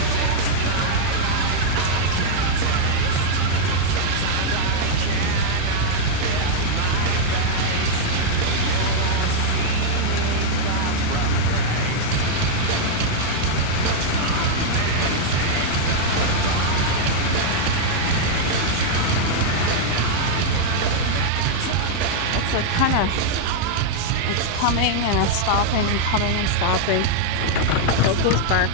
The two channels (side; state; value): both; different; correlation -0.01